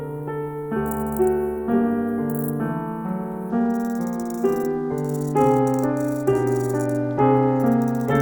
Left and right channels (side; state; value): both; identical; correlation 1.00